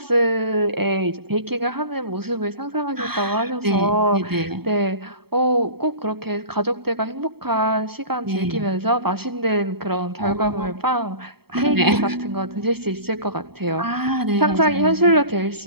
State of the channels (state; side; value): late; left; 0.96 ms